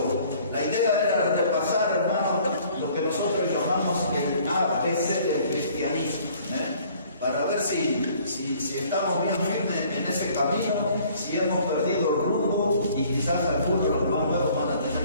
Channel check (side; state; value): both; inverted; correlation -0.56